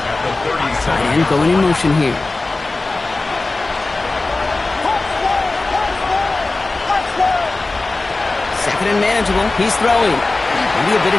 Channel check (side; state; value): right; quieter; 3.3 dB